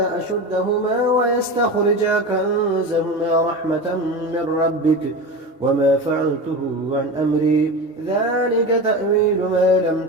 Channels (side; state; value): both; normal; correlation 0.26